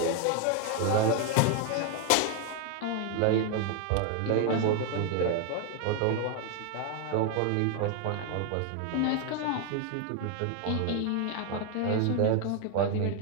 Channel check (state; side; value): different; both; correlation 0.01